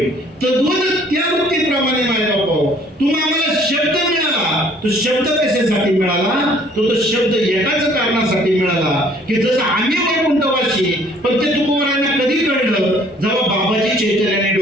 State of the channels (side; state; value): both; normal; correlation 0.58